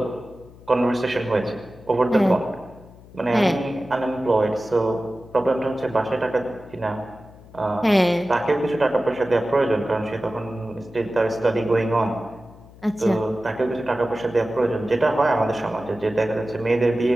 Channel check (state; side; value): noise; left; hum, 21 dB below the sound